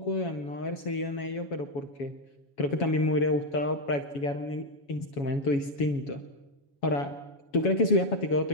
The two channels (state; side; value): late; right; 7.2 ms